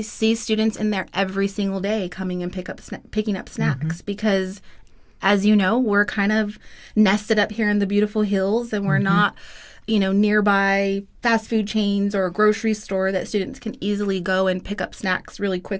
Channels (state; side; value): identical; both; correlation 1.00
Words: see students in there every single day coming and picking up snacks because, as you know, we're kind of nested up here in the beautiful hills, and we're not, nearby fast food chains or a grocery store that students can easily go and pick up snacks really